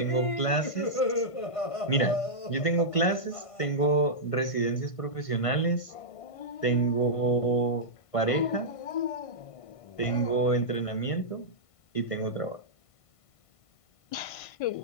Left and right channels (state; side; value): late; right; 1.5 ms